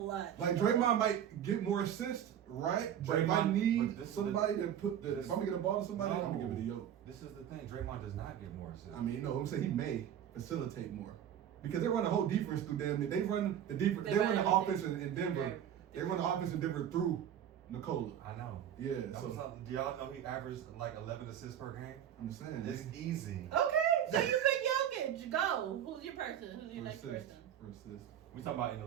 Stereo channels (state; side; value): quieter; left; 9.9 dB